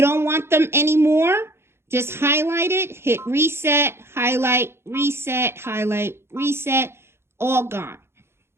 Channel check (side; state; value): left; late; 0.12 ms